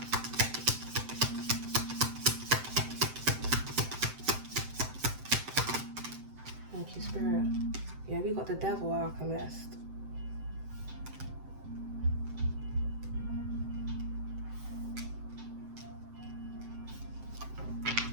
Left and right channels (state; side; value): late; left; 7.8 ms